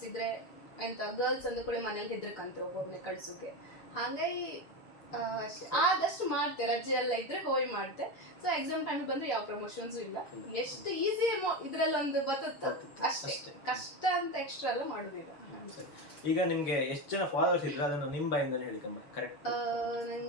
ಇದ್ರೆ ಎಂತ ಗರ್ಲ್ಸ್ ಅಂದ ಕೂಡ ಮನೇಲಿ ಹೆದ್ರಕಂತ್ರ ಒಬ್ಬೊಬ್ನೆ ಕಳ್ಸೋಕೆ. ಹಾಗಾಗಿ ಆದಷ್ಟು ಮಾಡ್ತೆ, ರಜೆ ಎಲ್ಲ ಇದ್ರೆ ಹೋಗಿ ಮಾಡ್ತೆ. ಸೊ ಎಕ್ಸಾಮ್ ಟೈಮ್ ಬಂದ್ರೆ ಯಾವ ಪ್ರಮೋಷನ್ಸ್ ಇಲ್ಲ. ಎಷ್ಟು ಈಸಿ ಇದ್ರಲ್ಲಿ ಒಂದು ಬರುತ್ತೆ ಅಷ್ಟೇ, ಕಷ್ಟ ಅಂತ ಎಕ್ಸ್ಟ್ರಾ ಎಲ್ಲ ಮಾಡುದಿಲ್ಲ. ಈಗ ನಿಮ್ಗೆ ಎಷ್ಟು ಜನ ಫಾಲೋವರ್ಸ್ ಇದ್ರೆ ಅದನ್ನು ನಿಮ್ಮ ಬಾಯಿಂದಲೇ ಹೇಳಿ ಕರೆಕ್ಟ್?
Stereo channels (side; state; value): right; late; 6.9 ms